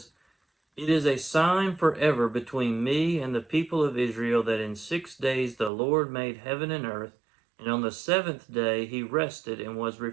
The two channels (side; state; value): left; drops out; at 5.7 s